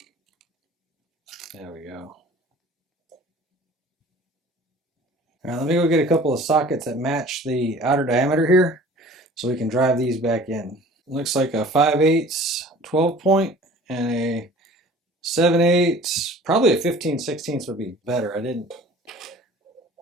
There we go. All right, let me go get a couple of sockets that match the outer diameter here so we can drive these back in. Looks like a 5/8 12 point and a 7/8, probably a 15/16 would be better. I didn't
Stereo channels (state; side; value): normal; both; correlation 0.46